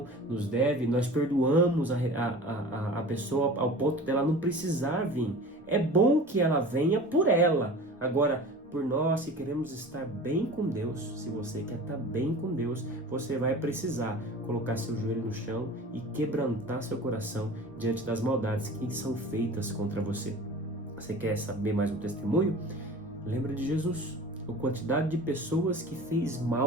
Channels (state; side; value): normal; both; correlation 0.38